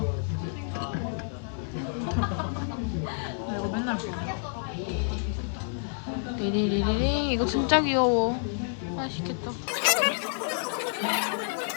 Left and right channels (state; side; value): silent; right; 59 dB below the other